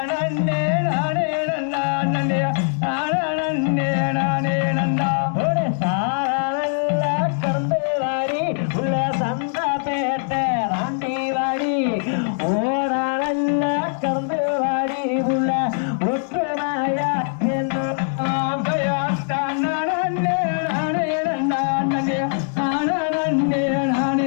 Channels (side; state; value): right; silent; digital silence